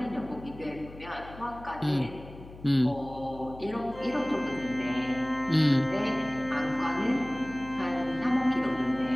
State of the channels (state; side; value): noise; left; hum, 17 dB below the sound